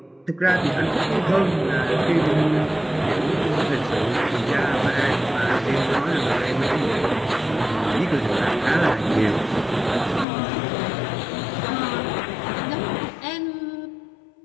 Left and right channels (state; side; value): drops out; right; at 10.2 s